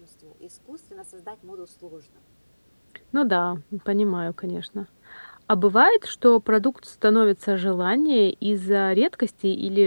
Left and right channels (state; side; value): inverted; both; correlation -1.00